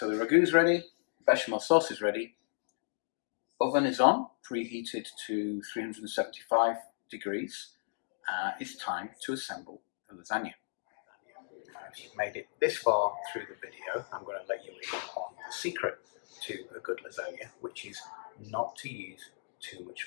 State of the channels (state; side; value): silent; right; digital silence